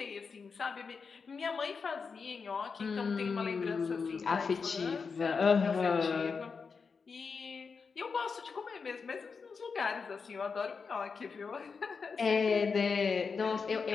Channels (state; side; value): quieter; right; 5.2 dB